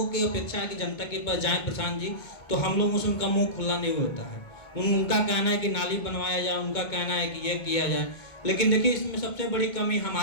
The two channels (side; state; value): right; late; 2.2 ms